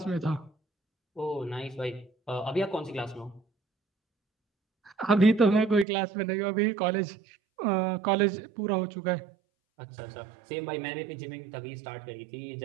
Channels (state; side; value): drops out; left; at 5.9 s